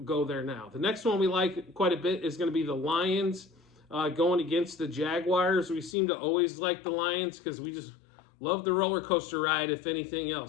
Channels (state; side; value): drops out; right; at 6.0 s